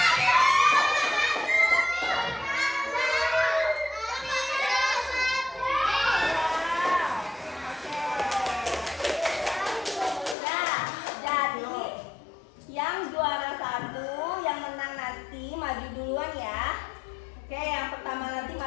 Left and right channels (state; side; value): drops out; right; at 10.4 s